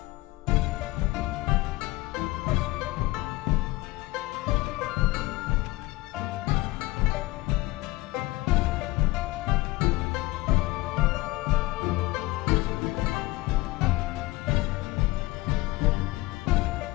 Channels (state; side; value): quieter; right; 20.0 dB